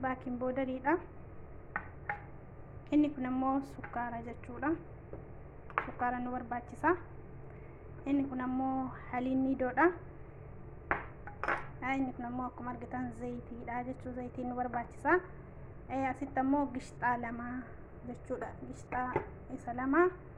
baaking powderiidha. Inni kun immoo sukkaara jechuudha. Sukkaara nu barbaachisa. Inni kun immoo haliin niidoodha. Inni kun immoo akkuma argitan zayitiidha jechuu, zayitiin nu barbaachisa. Asitti immoo gishxaa lama jechuudha. Gishxaa isa lama.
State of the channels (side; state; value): both; identical; correlation 1.00